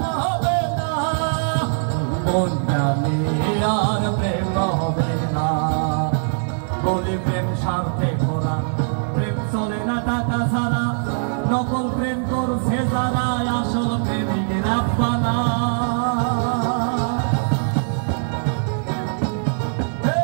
মন জানে আর প্রেম হবে না বলি প্রেম স্বার্থে ভোলা প্রেম চলে না টাকা ছাড়া নকল প্রেম করছে যারা আসল প্রেমিক রাখবা না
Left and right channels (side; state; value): left; silent; digital silence